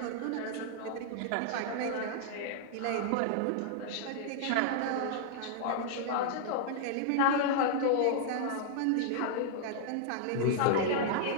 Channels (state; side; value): different; both; correlation -0.01